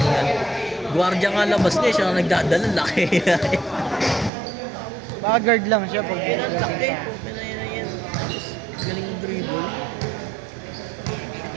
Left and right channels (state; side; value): drops out; left; at 4.3 s